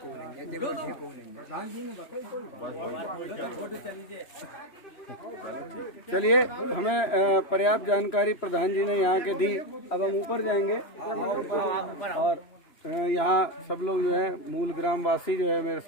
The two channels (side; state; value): right; late; 3.0 ms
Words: चलिए, हमें पर्याप्त जानकारी प्रधान जी ने यहाँ के दी। अब हम ऊपर जाएंगे और यहाँ सब लोग जो है मूल ग्रामवासी जो है मेरे